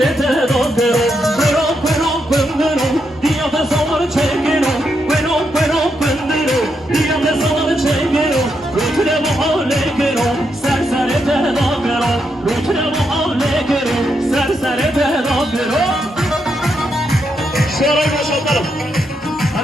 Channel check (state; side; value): normal; both; correlation 0.81